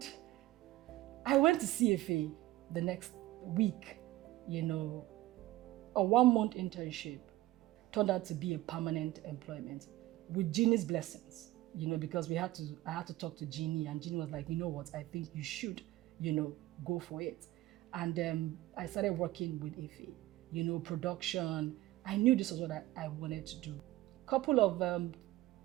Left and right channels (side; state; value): left; quieter; 16.5 dB